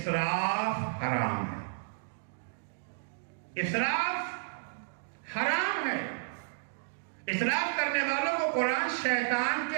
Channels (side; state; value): left; silent; digital silence